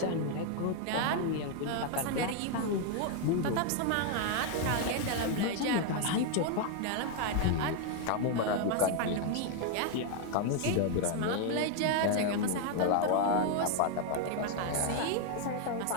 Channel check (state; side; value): different; both; correlation 0.01